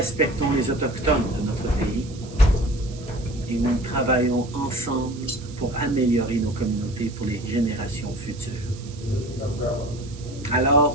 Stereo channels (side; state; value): right; noise; hiss, 20 dB below the sound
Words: les autochtones de notre pays. et nous travaillons ensemble pour améliorer nos communautés pour les générations futures.